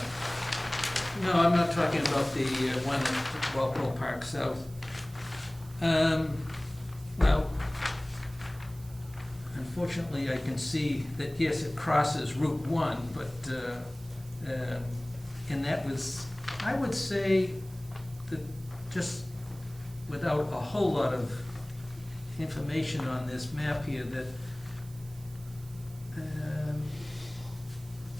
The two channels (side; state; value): right; noise; hiss, 23 dB below the sound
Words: No, I'm not talking about the one at Walpole Park South. Well, unfortunately, I can see that, yes, it crosses Route 1, but, and that was, I would say, that just without a whole lot of information on this map here,